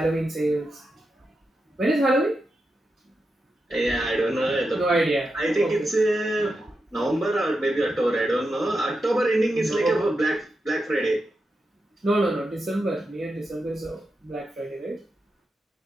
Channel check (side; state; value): both; normal; correlation 0.88